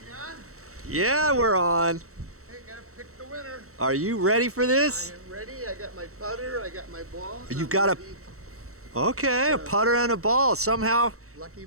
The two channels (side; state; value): left; late; 0.64 ms